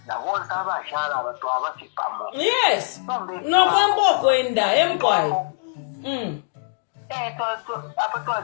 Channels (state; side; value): silent; right; digital silence